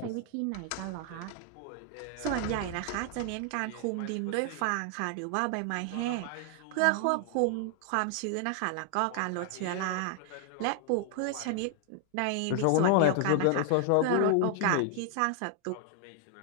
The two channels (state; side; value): different; both; correlation 0.00